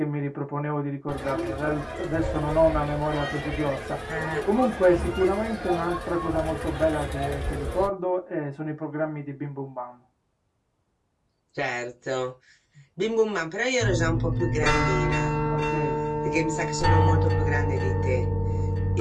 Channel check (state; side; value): identical; both; correlation 1.00